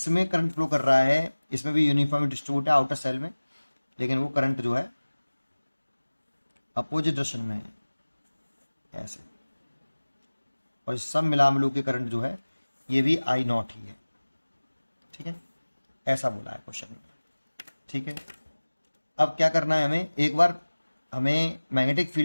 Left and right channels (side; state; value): both; inverted; correlation -1.00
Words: करंट फ्लो कर रहा है, इसमें भी यूनिफॉर्म डिस्ट्रीब्यूट है आउटर सेल में, लेकिन वो करंट जो है अपोजिट डायरेक्शन में है ऐसे। और सब मिला मिलू के करंट जो है ये भी आई नॉट ही है। ठीक है, ऐसा बोला है क्वेश्चन में। ठीक है, अब क्या करना है हमें, एक बार हमें मैग्नेटिक